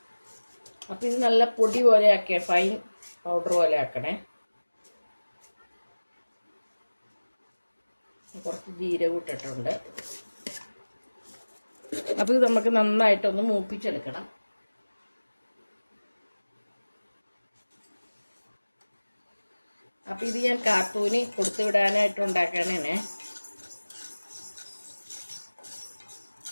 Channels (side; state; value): both; inverted; correlation -1.00